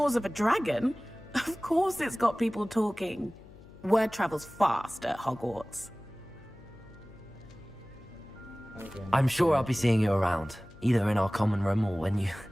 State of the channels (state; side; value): noise; left; hum, 21 dB below the sound